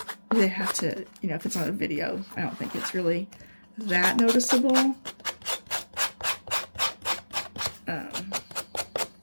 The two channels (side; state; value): both; inverted; correlation -1.00